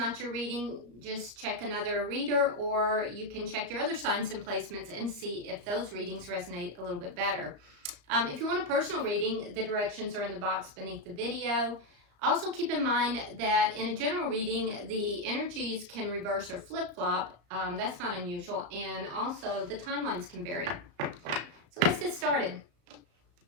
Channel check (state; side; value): late; left; 34 ms